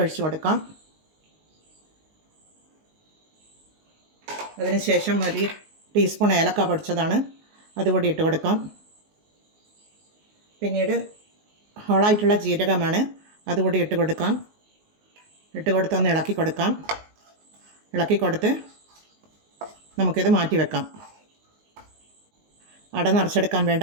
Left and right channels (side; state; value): left; late; 19 ms